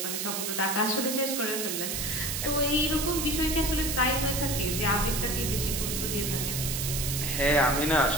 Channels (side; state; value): right; noise; hiss, 2 dB below the sound